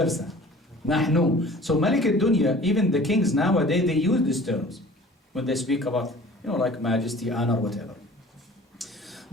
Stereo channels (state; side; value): normal; both; correlation 0.46